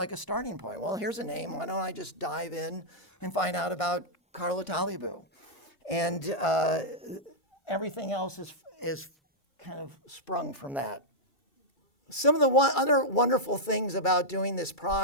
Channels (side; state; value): right; late; 2.3 ms